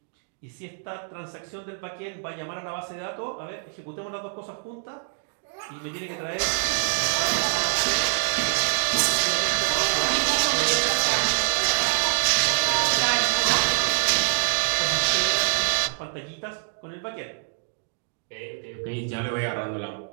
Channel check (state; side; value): silent; left; digital silence